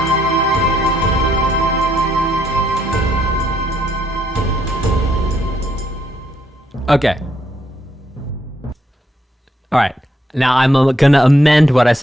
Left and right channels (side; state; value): both; normal; correlation 0.75